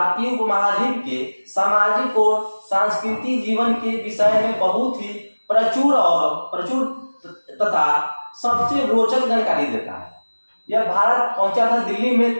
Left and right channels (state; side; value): inverted; both; correlation -1.00